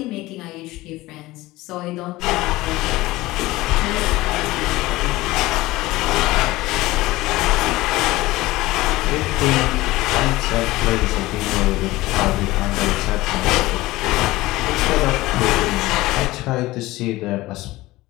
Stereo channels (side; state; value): right; quieter; 18.8 dB